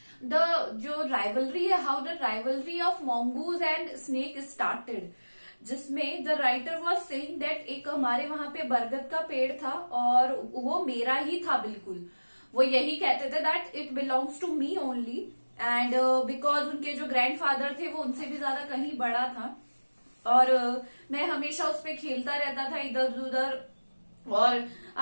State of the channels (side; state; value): both; inverted; correlation -1.00